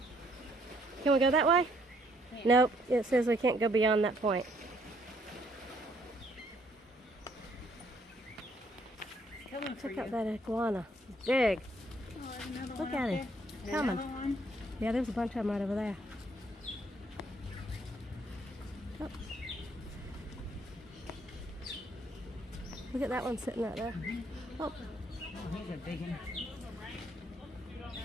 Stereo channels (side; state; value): both; normal; correlation 0.67